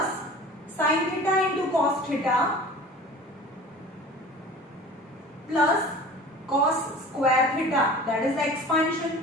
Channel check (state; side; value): normal; both; correlation 0.41